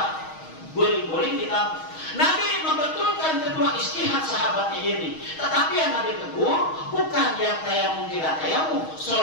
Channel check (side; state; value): right; late; 6.3 ms